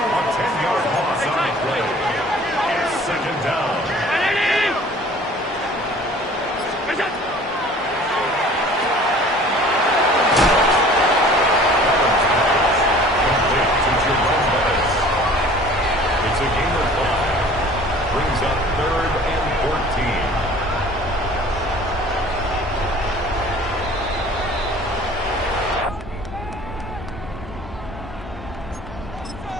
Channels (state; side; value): normal; both; correlation 0.48